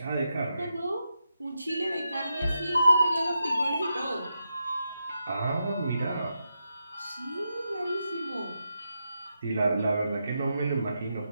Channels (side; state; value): both; inverted; correlation -0.86